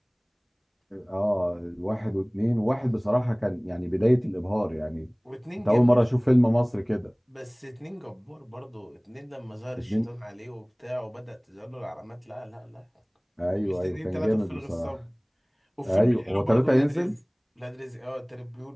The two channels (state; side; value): identical; both; correlation 1.00